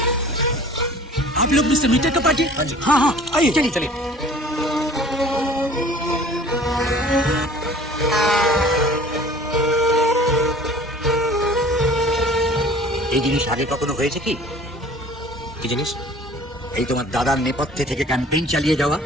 आप लोग मिस्टर मीटर का पार्टी? हाँ हाँ आइए चलिए चलिए। এই জিনিস আগে কখনো হয়েছে কি? কি জিনিস? এই তোমার দাদার নেপথ্যে থেকে ক্যাম্পেইন চালিয়ে যাওয়া?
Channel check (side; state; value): both; normal; correlation 0.48